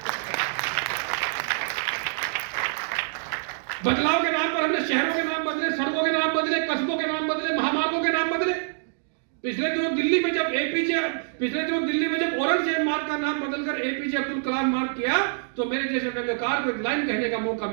बदलाव के नाम पर हमने शहरों के नाम बदले, सड़कों के नाम बदले, कस्बों के नाम बदले, महामार्गों के नाम बदले। पिछले दिनों दिल्ली में जब औरंगजेब मार्ग का नाम बदलकर एपीजे अब्दुल कलाम मार्ग किया तो मेरे जैसे व्यंग्यकार को एक लाइन कहने का मौका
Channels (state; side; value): silent; left; digital silence